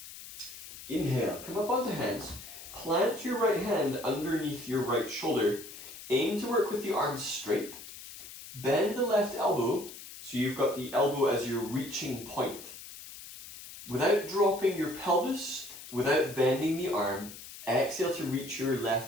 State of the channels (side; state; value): left; noise; hiss, 14 dB below the sound